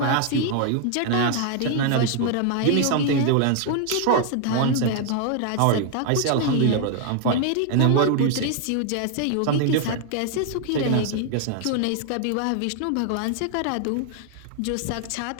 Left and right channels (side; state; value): both; different; correlation 0.00